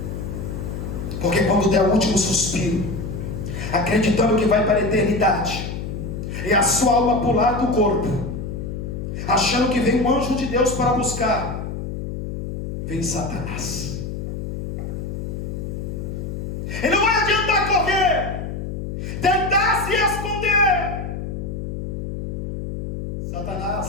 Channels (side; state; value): left; noise; hum, 5 dB below the sound